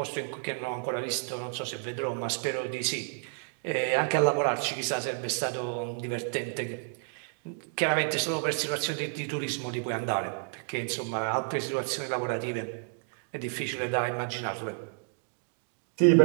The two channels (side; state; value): left; silent; 57 dB below the other